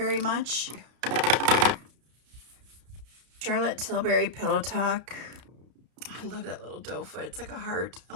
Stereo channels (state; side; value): late; left; 32 ms